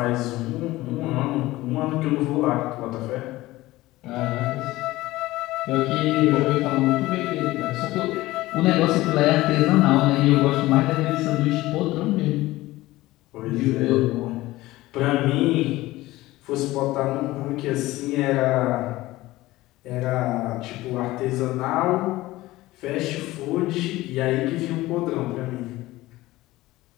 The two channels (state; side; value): quieter; right; 18.0 dB